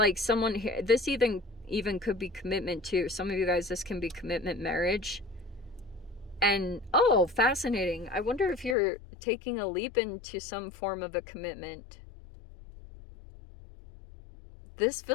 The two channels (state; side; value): drops out; right; at 8.8 s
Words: someone here, this even could be commitment too. Some of you guys, this can be commitment marriage. And oh, fascinating. I wonder if you're taking a leap into some form of a commitment. This